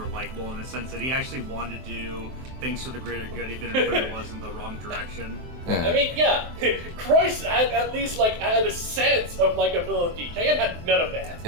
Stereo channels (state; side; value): late; left; 23 ms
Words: likable in the sense that he actually wanted to do things for the greater good, even if it was in the wrong direction. Yeah. I mean, yeah, Croix had at least had a sense of likability. Cayenne had none of that.